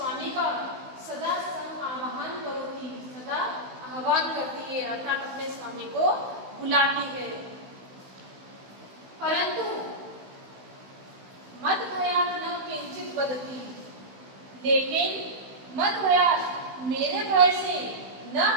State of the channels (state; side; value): late; left; 16 ms